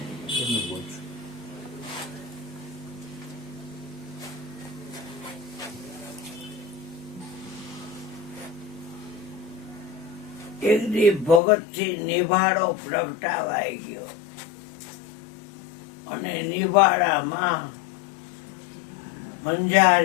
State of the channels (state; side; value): drops out; right; at 11.4 s